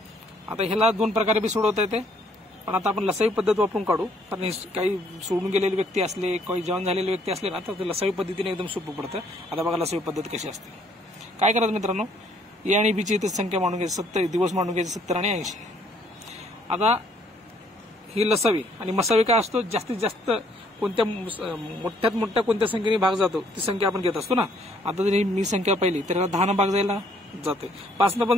ह्याला 2 प्रकारे बी सोडवता येते, पण आता आपण लसावी पद्धत वापरून काढू, कारण काही सोडून गेलेले व्यक्ती असले, काही जॉईन झालेले व्यक्ती असले ना, तर ते लसावी पद्धतीने एकदम सोपं पडतं. आता बघा लसावी पद्धत कशी असते. काय करायचं मित्रांनो, ए आणि बीची इथे संख्या मांडून घ्यायची, 70 दिवस मांडून घ्यायचे, 70 आणि 80. आता ही लसावी आणि मसावी काय असतो, जास्तीत जास्त कोणत्या मोठ्यात मोठ्या कोणत्या संख्येने भाग जातो ती संख्या आपण घेत असतो ना. आता जर मी संख्या पाहिली तर 10 न भाग जायला जाते, 5 न पण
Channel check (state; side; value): normal; both; correlation 0.65